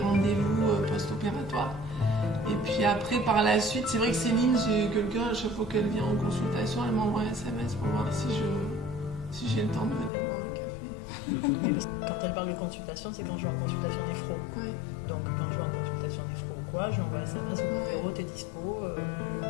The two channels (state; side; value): drops out; right; at 10.1 s